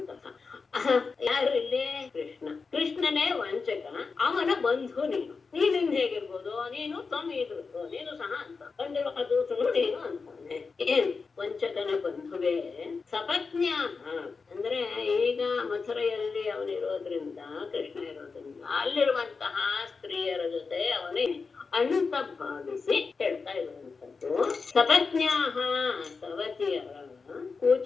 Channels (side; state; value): right; quieter; 4.7 dB